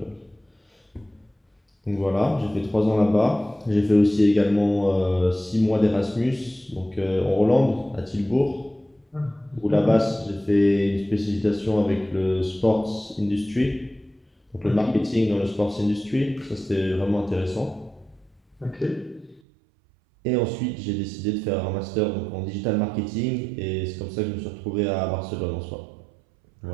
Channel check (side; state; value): left; drops out; at 19.4 s